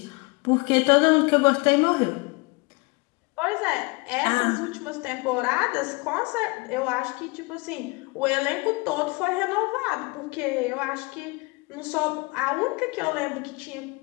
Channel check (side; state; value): right; quieter; 27.5 dB